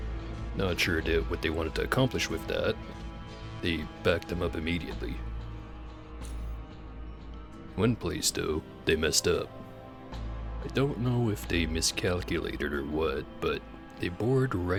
Not sure what they wanted to accomplish with that. They backed them up immediately. One place, though, they messed up. I don't know if they miscalculated or what, but they bored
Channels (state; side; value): identical; both; correlation 1.00